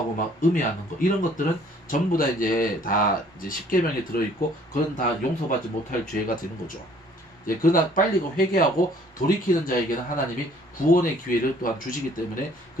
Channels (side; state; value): both; normal; correlation 0.58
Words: 막 음해하는 것, 이런 것들은 전부 다 이제 십계명에 들어있고 그건 다 용서받지 못할 죄가 되는 거죠. 그러나 빨리 회개하고 돌이키는 자에게는 하나님이 구원의 기회를 또한 주시기 때문에